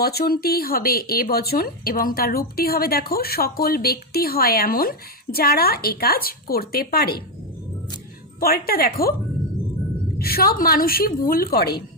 হবে এ বচন এবং তার রূপটি হবে, দেখো, সকল ব্যক্তি হয় এমন যারা এ কাজ করতে পারে। পরেরটা দেখো, সব মানুষই ভুল করে।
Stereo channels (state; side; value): normal; both; correlation 0.06